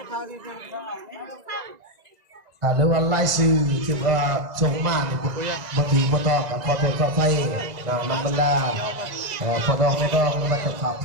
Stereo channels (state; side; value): late; left; 2.0 ms